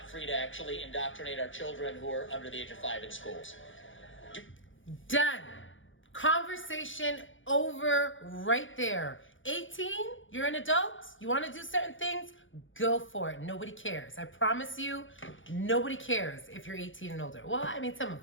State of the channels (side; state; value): right; late; 0.57 ms